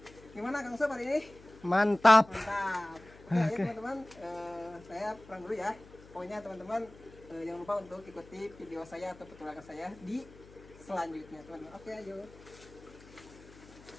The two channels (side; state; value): left; noise; hum, 21 dB below the sound